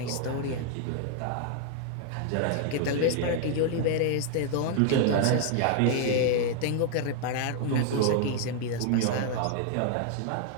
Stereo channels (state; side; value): different; both; correlation 0.00